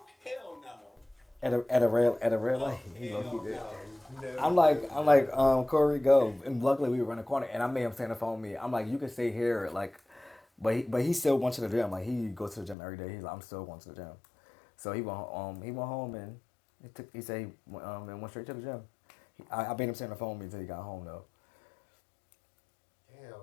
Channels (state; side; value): drops out; right; at 12.8 s